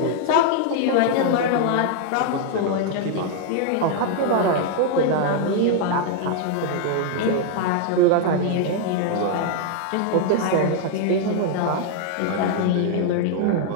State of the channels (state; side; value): different; both; correlation 0.00